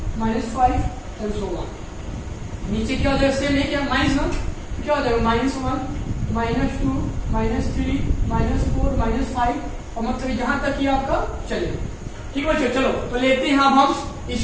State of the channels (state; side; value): identical; both; correlation 1.00